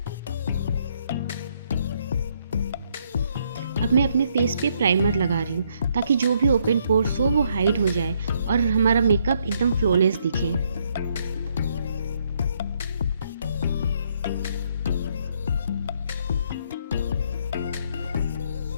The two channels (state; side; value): inverted; both; correlation -0.71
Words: अब मैं अपने फेस पे प्राइमर लगा रही हूँ ताकि जो भी ओपन पोर्स हो वो हाइड हो जाए और हमारा मेकअप एकदम फ्लॉलेस दिखे।